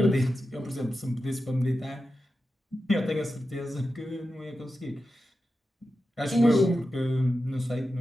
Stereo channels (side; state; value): both; normal; correlation 0.91